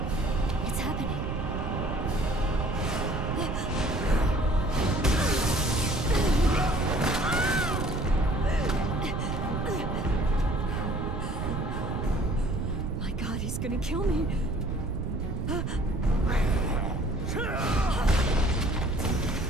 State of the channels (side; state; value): right; noise; rumble, 3 dB below the sound